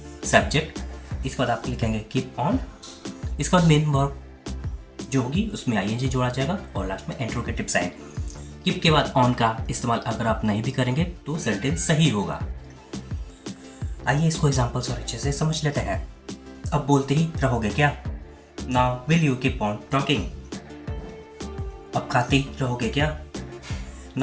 सब्जेक्ट, इसके बाद आप लिखेंगे कीप ऑन, इसके बाद मेन वर्ब जो होगी उसमें आईएनजी जोड़ा जाएगा और लास्ट में इंट्रोगेटिव साइन। कीप के बाद ऑन का इस्तेमाल अगर आप नहीं भी करेंगे तो सेंटेंस सही होगा। आइए इसको एग्जांपल्स और अच्छे से समझ लेते हैं। अब बोलते ही रहोगे क्या? Now will you keep on talking. अब खाते ही रहोगे क्या?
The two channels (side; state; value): both; identical; correlation 1.00